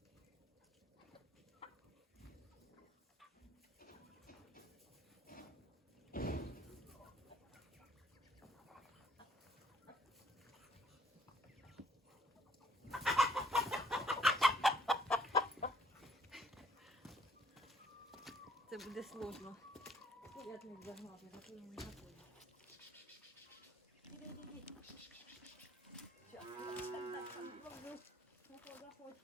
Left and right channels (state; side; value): normal; both; correlation 0.63